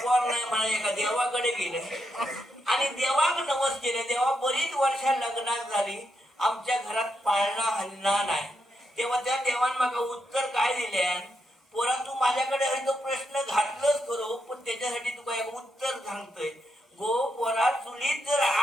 नाही म्हणा एका देवाकडे गेले आणि देवाक नवस केले. देवा बरीच वर्षा लग्नात झाली आमच्या घरात पाळणा हलणार नाही. तेव्हा त्या देवान मागा उत्तर काय दिले पोरा तू माझ्याकडे आहे तो प्रश्न घातलंच करो पण त्याच्यासाठी तू काय उत्तर सांगतोय गो पोरा चुलीत जर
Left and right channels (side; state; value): both; normal; correlation 0.82